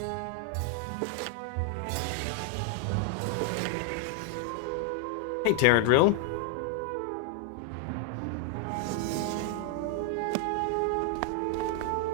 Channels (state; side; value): different; both; correlation 0.00